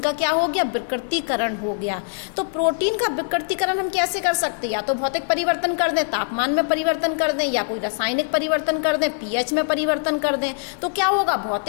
का क्या हो गया? विकृतीकरण हो गया। तो प्रोटीन का विकृतीकरण हम कैसे कर सकते हैं? या तो भौतिक परिवर्तन कर दें, तापमान में परिवर्तन कर दें, या कोई रासायनिक परिवर्तन कर दें, पीएच में परिवर्तन कर दें। तो क्या होगा?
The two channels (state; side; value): silent; right; digital silence